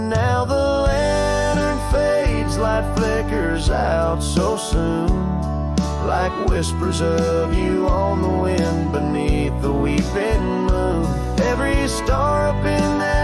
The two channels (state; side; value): identical; both; correlation 1.00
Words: the lantern fades, light flickers out so soon, like whispers of you on the wind beneath the weeping moon. Every star up in